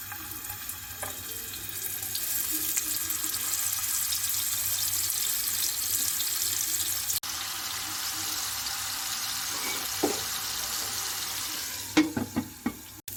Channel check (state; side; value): identical; both; correlation 1.00